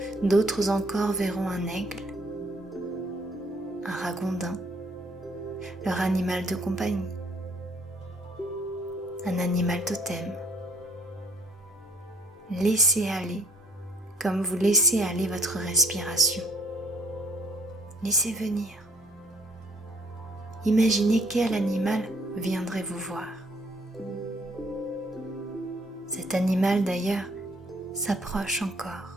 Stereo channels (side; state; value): both; normal; correlation 0.61